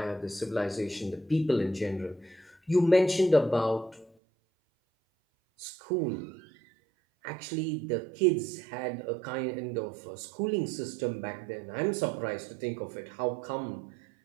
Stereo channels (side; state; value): left; drops out; at 4.1 s